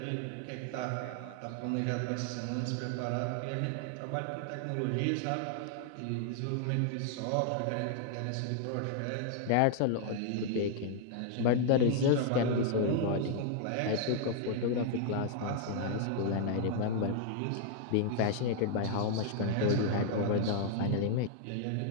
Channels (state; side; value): different; both; correlation 0.00